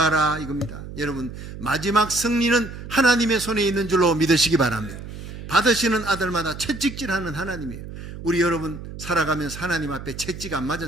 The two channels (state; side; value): noise; right; hum, 11 dB below the sound